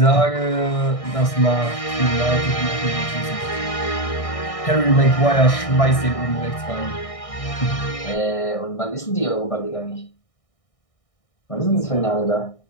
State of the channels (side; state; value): right; late; 1.6 ms